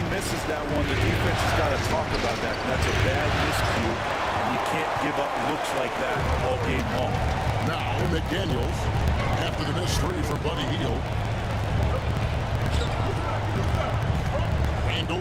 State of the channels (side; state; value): both; identical; correlation 1.00